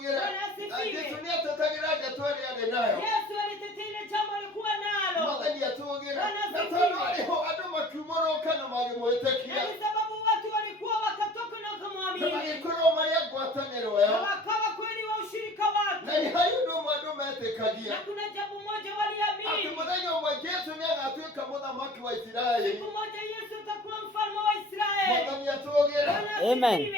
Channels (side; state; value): both; normal; correlation 0.46